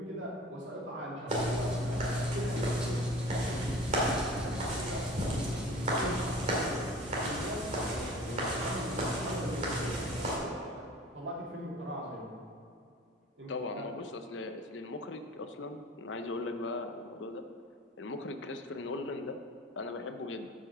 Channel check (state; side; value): normal; both; correlation 0.43